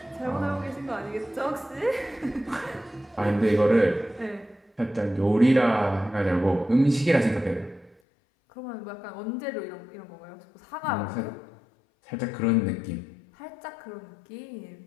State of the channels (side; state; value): right; drops out; at 8.0 s